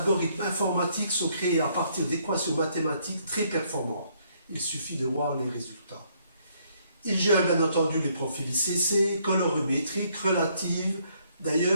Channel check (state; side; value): inverted; both; correlation -0.69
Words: informatiques sont créés à partir d'équations mathématiques très performantes. Il suffit de voir les résultats. Ils gèrent bien entendu les profils ICC, colorimétriques, relatives.